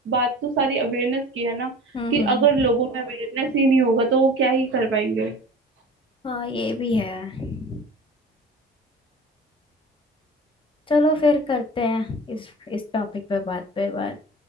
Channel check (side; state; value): both; normal; correlation 0.39